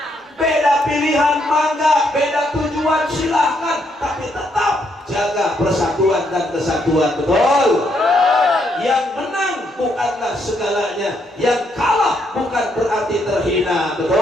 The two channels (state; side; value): normal; both; correlation 0.75